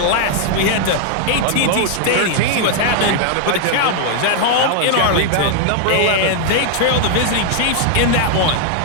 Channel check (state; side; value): different; both; correlation 0.00